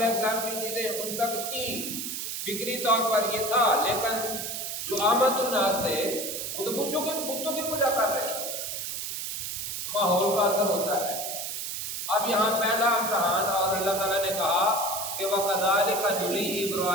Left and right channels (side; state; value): right; noise; hiss, 4 dB below the sound